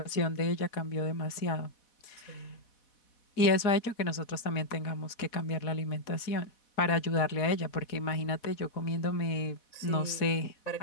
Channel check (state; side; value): late; right; 4.1 ms